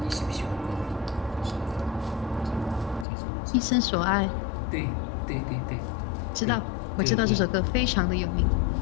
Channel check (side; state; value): right; drops out; at 3.1 s